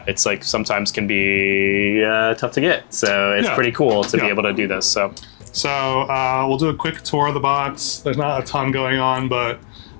it's sometimes can be tough to get, so it's pretty cool to be able to do this. So we'll do a quick tour of the box. There's not a ton going on, but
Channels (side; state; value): right; silent; digital silence